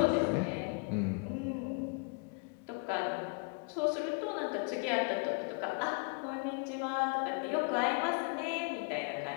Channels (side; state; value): right; quieter; 34.5 dB